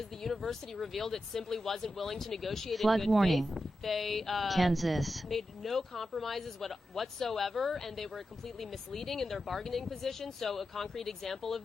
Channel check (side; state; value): both; normal; correlation 0.90